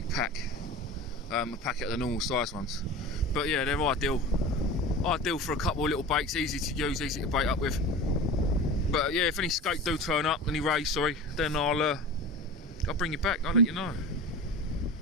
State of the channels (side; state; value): both; normal; correlation 0.33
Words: pack, a packet of the normal size ones. But yeah, they're ideal for a couple of little baits, easy to use, easy to bait up with. But yeah, if any skate do turn up, any rays, sorry, then I'll bring you back. I'll let you know.